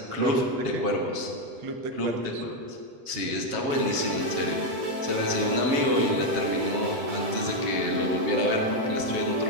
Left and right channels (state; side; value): late; left; 8.0 ms